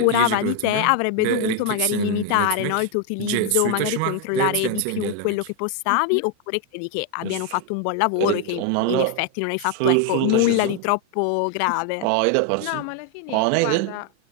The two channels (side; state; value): both; different; correlation 0.01